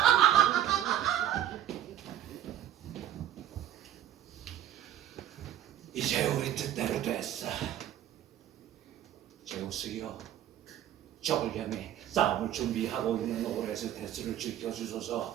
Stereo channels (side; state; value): left; quieter; 11.4 dB